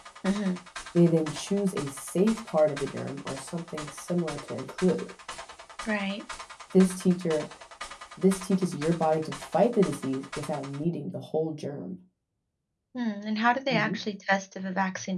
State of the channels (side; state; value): both; identical; correlation 1.00